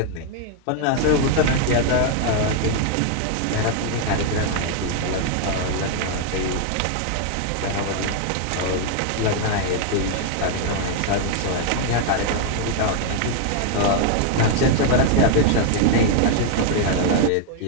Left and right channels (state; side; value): different; both; correlation 0.00